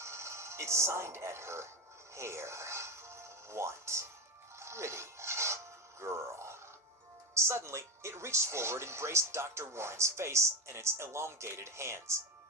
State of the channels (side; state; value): both; normal; correlation 0.17